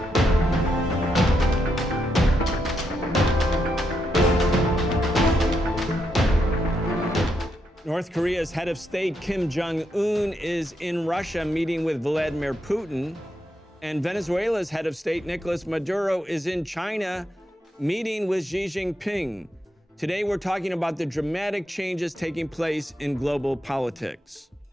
North Korea's head of state, Kim Jong-un, is in Russia meeting with Vladimir Putin. And Venezuela's head of state, Nicolás Maduro, is in China meeting with Xi Jinping. Today, we're talking about the dramatic changes taking place in global politics.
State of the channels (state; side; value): normal; both; correlation 0.82